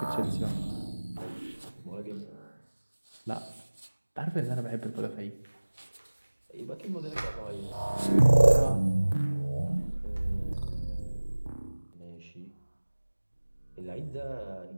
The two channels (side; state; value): both; inverted; correlation -1.00